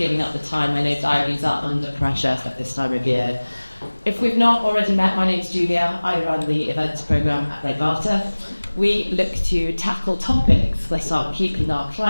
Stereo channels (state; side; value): inverted; both; correlation -1.00